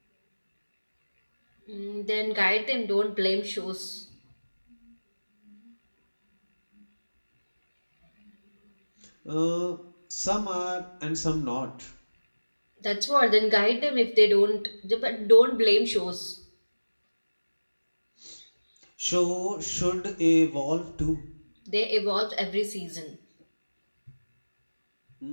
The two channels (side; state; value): both; inverted; correlation -1.00